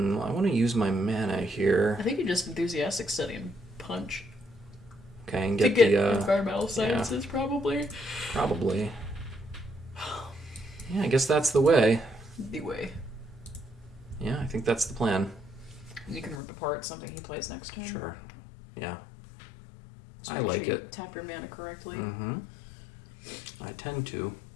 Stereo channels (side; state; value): right; drops out; at 16.4 s